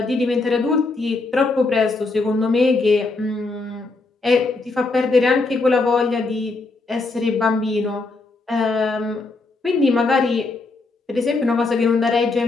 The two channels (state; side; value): quieter; right; 3.5 dB